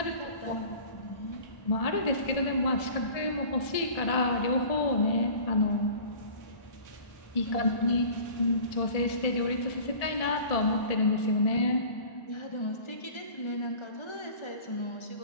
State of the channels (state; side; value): late; right; 1.7 ms